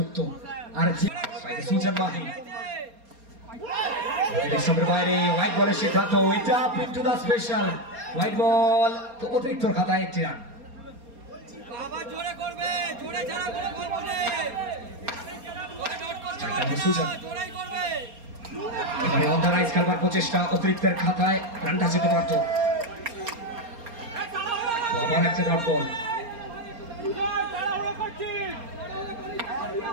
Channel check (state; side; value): late; left; 4.3 ms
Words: আর সুজন মাহি। বাইরে হোয়াইট বলের সিদ্ধান্ত, এটা পিন্টু দা স্পেশাল হোয়াইট বল। তো অতিরিক্ত খাতায় একটি রান। সুজন এবারে অর্গানাইজ খেলবার প্রচেষ্টা, অতিরিক্তের খাতায় রানটা যেতে পারত। আবার একটা ডট বল।